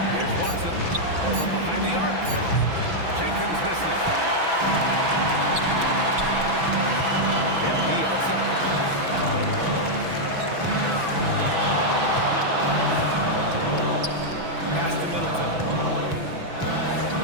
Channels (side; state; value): left; late; 6.0 ms